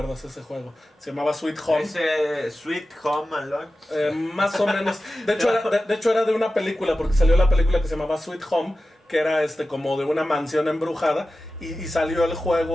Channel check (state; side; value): normal; both; correlation 0.94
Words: ese juego. Se llamaba Sweet Home. ¿Ese Sweet Home Alone? Más o menos. De hecho era de una película, porque salió la película que se llamaba Sweet Home, que era como de una mansión embrujada, y salió el